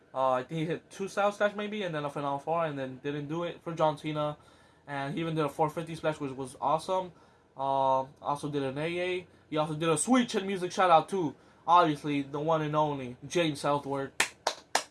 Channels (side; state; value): both; identical; correlation 1.00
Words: I think he hit 2 Styles Clash maybe, and then a Final 4, and then didn't do it for John Cena. And he even did a 450 splash, which was awesome. Also did an AA. He also did a sweet chin music shout out to, obviously, the one and only James Southward.